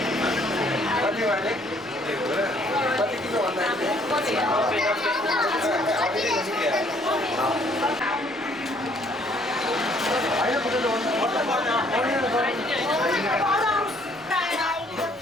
कति भने? कति किलो भन्दाखेरि?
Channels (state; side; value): normal; both; correlation 0.63